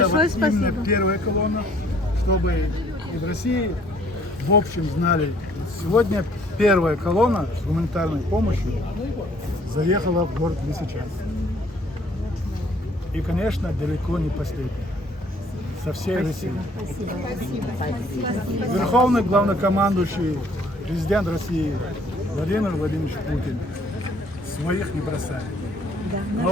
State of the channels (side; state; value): both; normal; correlation 0.60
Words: вот именно спасибо. первая колонна, чтобы и в России в общем знали. Сегодня первая колонна с гуманитарной помощью заехала в город Лисичанск. И, конечно, далеко не последняя. Со всей России. Верховный главнокомандующий, президент России Владимир Владимирович Путин своих не бросает.